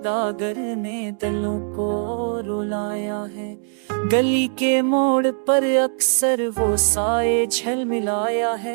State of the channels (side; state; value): left; silent; 58 dB below the other